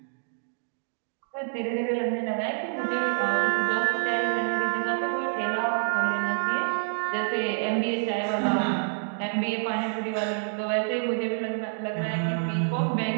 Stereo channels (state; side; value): silent; left; digital silence